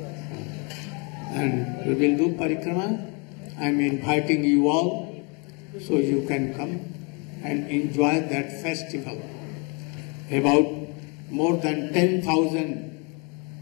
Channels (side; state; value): right; quieter; 32.6 dB